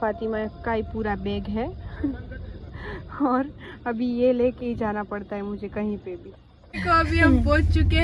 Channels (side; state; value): both; identical; correlation 1.00